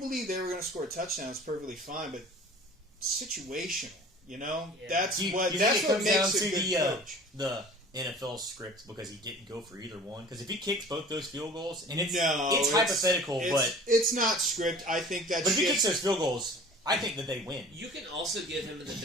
they were going to score a touchdown, it's perfectly fine. But situational, that's what makes a good coach. The NFL script because he didn't go for either one. Because if he kicks both those field goals, and it's hypothetical, but it's not script. I think that's. But if he kicks those field goals, I think that they win. You can also give him the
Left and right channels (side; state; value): both; normal; correlation 0.44